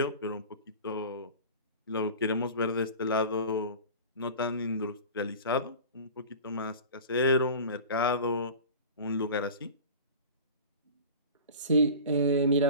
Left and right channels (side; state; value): both; inverted; correlation -0.37